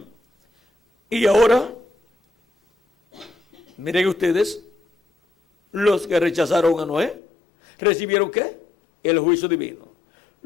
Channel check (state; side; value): drops out; right; at 7.2 s